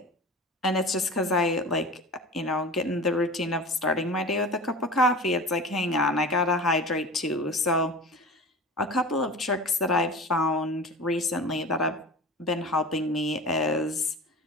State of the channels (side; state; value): both; normal; correlation 0.34